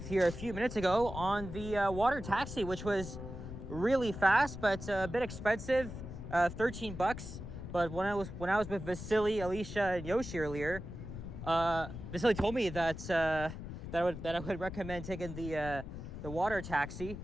here a few minutes ago on the water taxi, which was really fast but a bit expensive, 13 bucks. But when I was with Vasily, Alicia, and Yoshi earlier, Vasily told me that I would recommend taking the water taxi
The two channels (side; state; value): left; noise; rumble, 9 dB below the sound